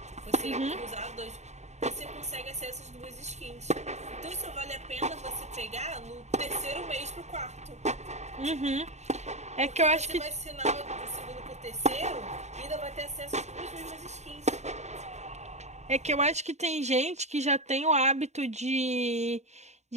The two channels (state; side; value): late; left; 0.33 ms